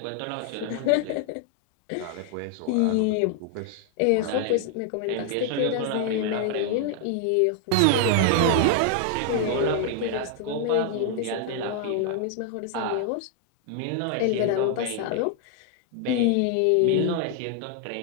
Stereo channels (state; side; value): different; both; correlation 0.00